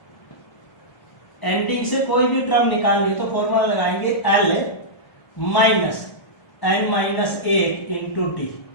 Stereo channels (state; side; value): late; right; 1.3 ms